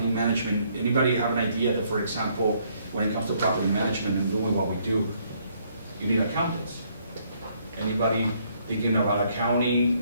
management, anybody have an idea that, for example, when it comes to property management and doing what we do, you need accountants? Anybody thinking about accounting,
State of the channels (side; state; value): both; inverted; correlation -0.68